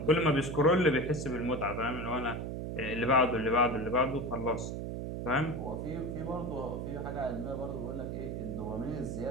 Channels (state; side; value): noise; right; hum, 4 dB below the sound